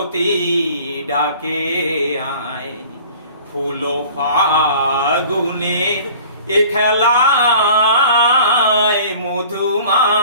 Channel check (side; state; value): both; inverted; correlation -0.47